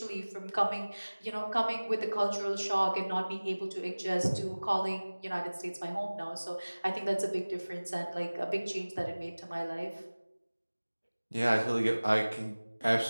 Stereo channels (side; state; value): both; inverted; correlation -1.00